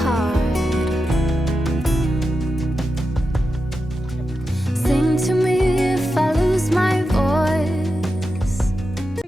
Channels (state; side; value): normal; both; correlation 0.90